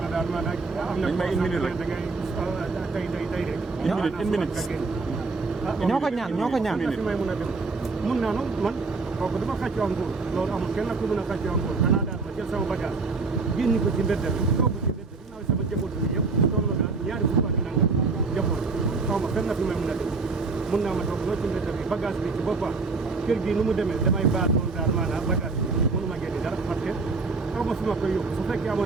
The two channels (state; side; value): quieter; left; 4.1 dB